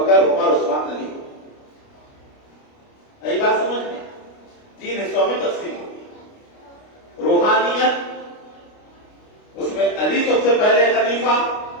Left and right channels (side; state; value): right; late; 29 ms